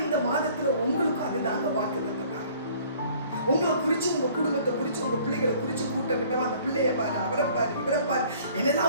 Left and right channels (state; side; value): inverted; both; correlation -0.54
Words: இந்த மாதத்துல உங்களுக்கும் அதுதாங்க வாக்கு தந்தார். உங்களை குறிச்சு, உங்க குடும்பத்தை குறிச்சு, உங்க பிள்ளைகளை குறிச்சு கூட்டம் கிட்டவா, அந்த பிள்ளைய பாரு, அவரை பாரு, இவரை பாரு,